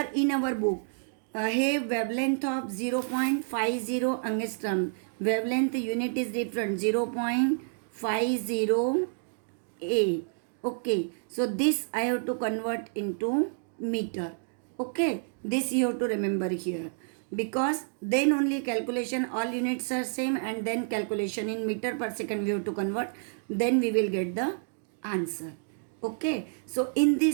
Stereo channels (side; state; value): left; silent; digital silence